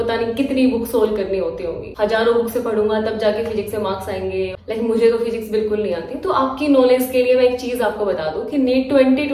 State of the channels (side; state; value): both; identical; correlation 1.00